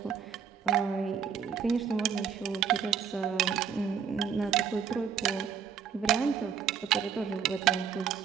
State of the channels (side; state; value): left; quieter; 7.2 dB